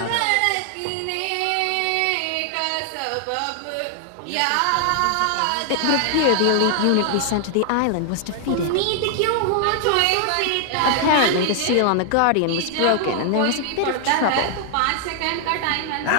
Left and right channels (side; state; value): both; different; correlation 0.00